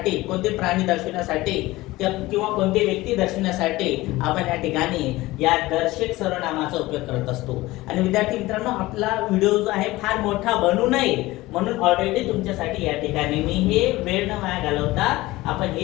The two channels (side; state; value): right; quieter; 18.9 dB